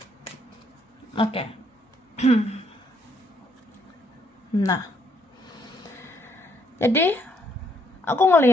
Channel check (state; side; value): normal; both; correlation 0.71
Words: Oke. Nah, jadi aku